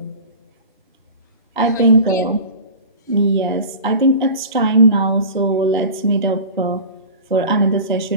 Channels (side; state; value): both; inverted; correlation -0.36